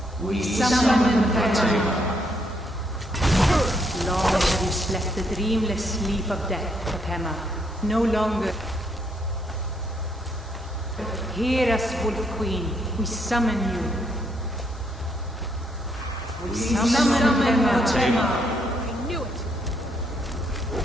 We summon Potema. Long have you slept the dreamless sleep of death, Potema. No longer. Hear us, Wolf Queen. We summon you. We summon Potema. I knew it!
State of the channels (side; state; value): both; normal; correlation 0.74